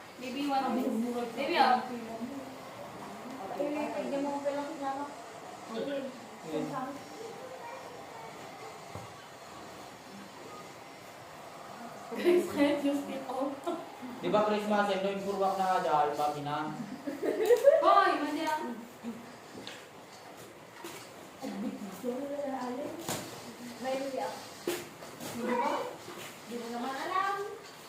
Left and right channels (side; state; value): both; identical; correlation 1.00